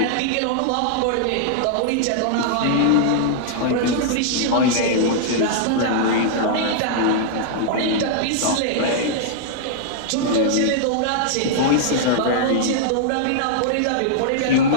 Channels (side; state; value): both; different; correlation -0.01